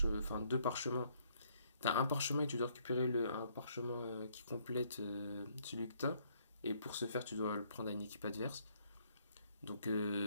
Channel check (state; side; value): inverted; both; correlation -0.68